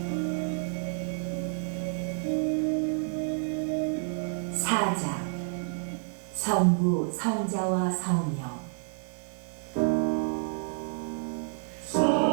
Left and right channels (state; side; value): silent; left; digital silence